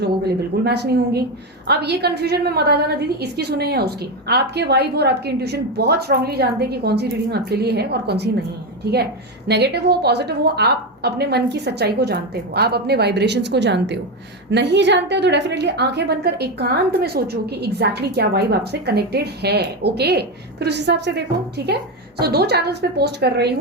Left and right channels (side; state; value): both; normal; correlation 0.12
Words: लोगों के लिए बिल्कुल मैच नहीं होंगी। अब ये कंफ्यूजन में मत आ जाना दीदी इसकी सुने या उसकी। आपके वाइब और आपकी इंट्यूशन बहुत स्ट्रांगली जानते हैं कि कौन सी रीडिंग आपके लिए है और कौन सी नहीं है, ठीक है। नेगेटिव हो पॉजिटिव हो, आप अपने मन की सच्चाई को जानते हो, आप अपने वाइब्रेशंस को जानते हो। नहीं जानते हो तो डेफिनेटली आंखें बंद कर एकांत में सोचो कि एग्जैक्टली क्या वाइब आपसे कनेक्टेड है, ओके। फिर उस हिसाब से देखो, ठीक है। सो 2 चैनल्स पे पोस्ट कर रही